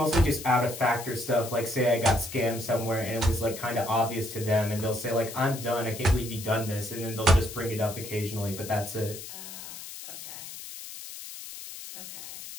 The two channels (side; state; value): left; noise; hiss, 11 dB below the sound